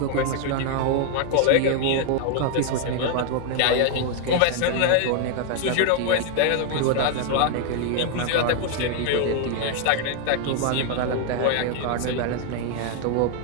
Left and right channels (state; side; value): different; both; correlation 0.00